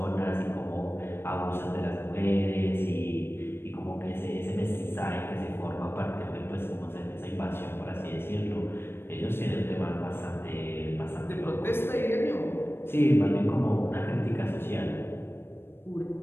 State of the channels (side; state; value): right; late; 0.11 ms